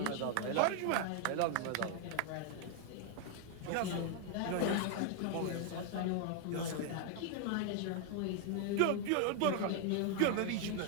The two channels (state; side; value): different; both; correlation 0.00